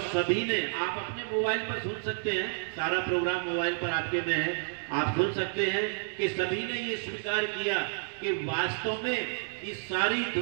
सभी ने, आप अपने मोबाइल पर सुन सकते हैं, सारा प्रोग्राम मोबाइल पर आपके में है, आप सुन सकते हैं कि सभी ने ये स्वीकार किया कि वास्तव में इस सारी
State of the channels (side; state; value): left; silent; 58 dB below the other